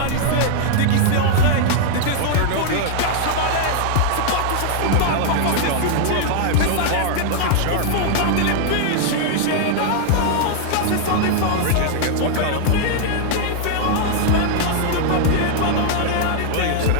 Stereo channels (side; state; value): both; different; correlation -0.01